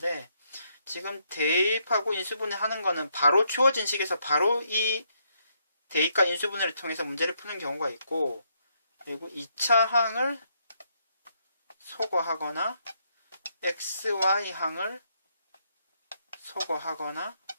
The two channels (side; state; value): both; inverted; correlation -0.75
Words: 지금 대입하고 인수분해 하는 거는 바로 주어진 식에서 바로 이 대입과 인수분해를 통해서 문제를 푸는 경우가 있고, 그리고 2차 항을 소거하거나 xy 항을 소거하거나